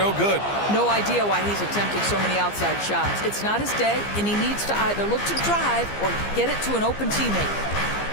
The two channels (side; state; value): right; late; 15 ms